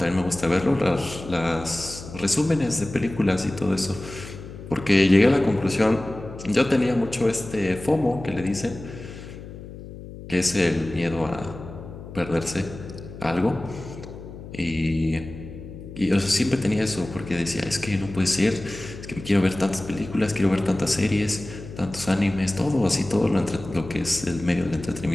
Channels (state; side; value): noise; left; hum, 13 dB below the sound